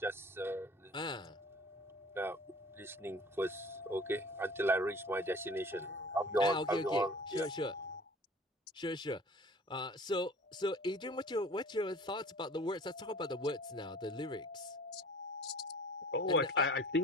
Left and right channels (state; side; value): normal; both; correlation 0.46